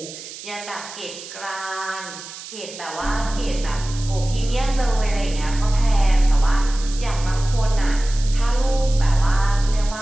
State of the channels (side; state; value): right; noise; hiss, 13 dB below the sound